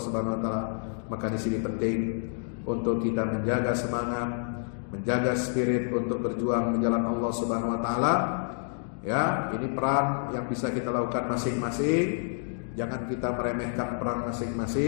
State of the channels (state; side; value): silent; right; 59 dB below the other